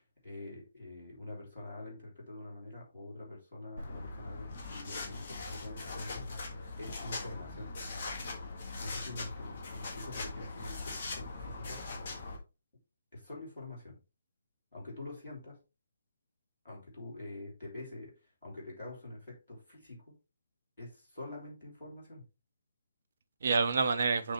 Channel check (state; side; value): inverted; both; correlation -0.79